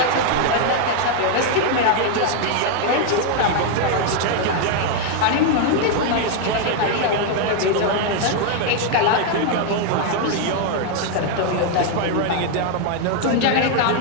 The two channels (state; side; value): different; both; correlation 0.00